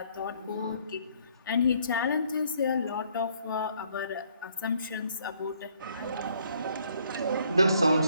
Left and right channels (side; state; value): both; inverted; correlation -0.66